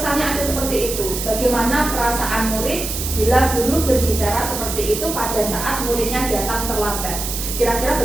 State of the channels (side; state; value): right; noise; hiss, 5 dB below the sound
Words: ada seperti itu, bagaimana perasaan murid bila guru berbicara seperti itu pada saat muridnya datang terlambat? Kira-kira